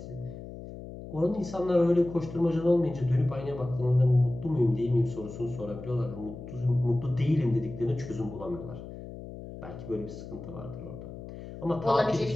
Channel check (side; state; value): left; noise; hum, 12 dB below the sound